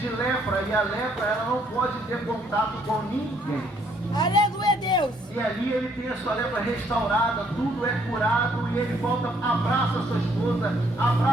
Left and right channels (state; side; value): normal; both; correlation 0.67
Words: lepra, e a lepra ela não pode ter contato com ninguém. Aleluia, Deus! E ali ele tem a sua lepra restaurada, tudo é curado, e ele volta, abraça a sua esposa,